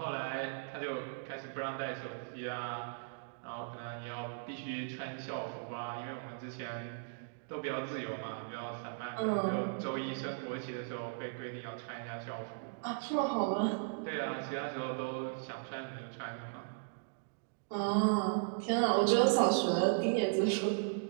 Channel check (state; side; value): silent; left; digital silence